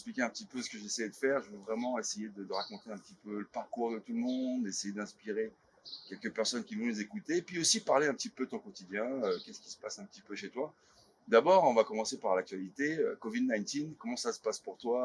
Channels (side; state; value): both; identical; correlation 1.00